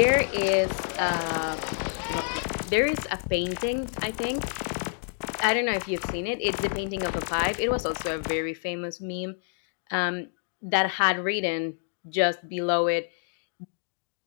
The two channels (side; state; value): right; silent; digital silence